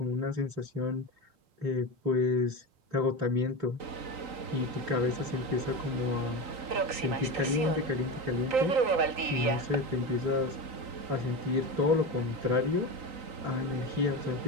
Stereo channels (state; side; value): late; left; 3.9 ms